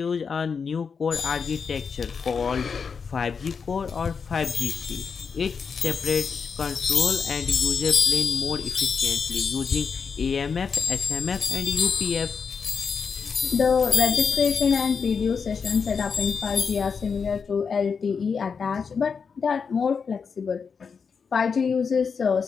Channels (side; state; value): right; quieter; 5.8 dB